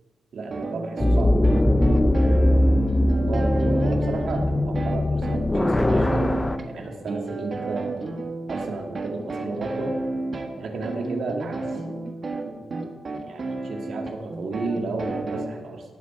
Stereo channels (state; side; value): normal; both; correlation 0.94